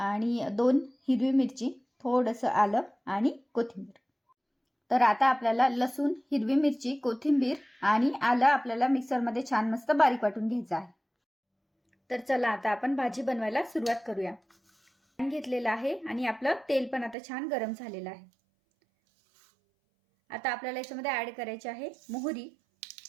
2 हिरवी मिरची, थोडंसं आलं आणि कोथिंबीर। तर आता आपल्याला लसूण, हिरवी मिरची, कोथिंबीर आणि आलं आपल्याला मिक्सरमध्ये छान मस्त बारीक वाटून घ्यायचं आहे। तर चला आता आपण भाजी बनवायला सुरुवात करूया। पॅन घेतलेला आहे आणि आपलं तेल पण आता छान गरम झालेलं आहे। आता आपल्याला याच्यामध्ये ऍड करायचे आहे मोहरी,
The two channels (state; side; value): drops out; left; at 17.2 s